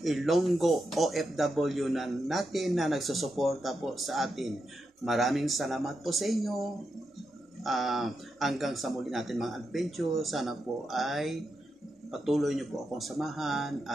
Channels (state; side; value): normal; both; correlation 0.86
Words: Ilonggo OFW na natin na nagsusuporta po sa atin. Maraming salamat po sa inyo. Hanggang sa muli natin mga adventure, sana po ay patuloy nyo po akong samahan